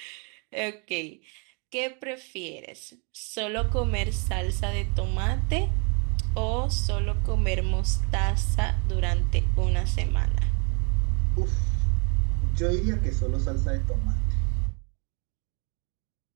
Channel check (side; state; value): left; quieter; 35.0 dB